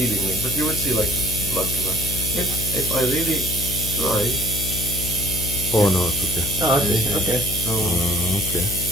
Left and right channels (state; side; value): noise; left; hum, 6 dB below the sound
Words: but you would see like blood come out. If I really try, Oh no, it's okay. Oh, I see. Okay. so Okay.